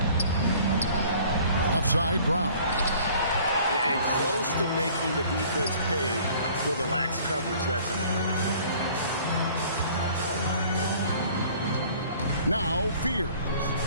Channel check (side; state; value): both; inverted; correlation -0.52